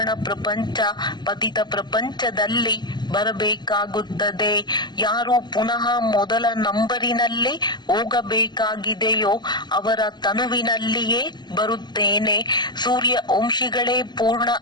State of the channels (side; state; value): right; late; 0.21 ms